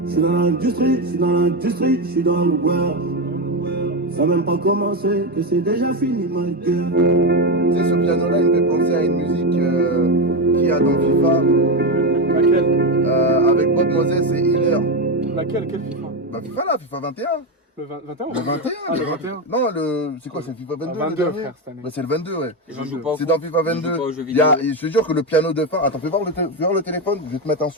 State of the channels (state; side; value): normal; both; correlation 0.11